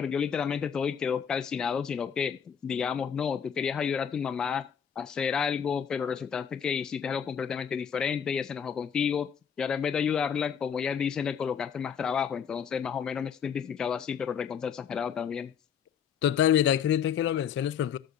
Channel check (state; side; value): quieter; right; 7.6 dB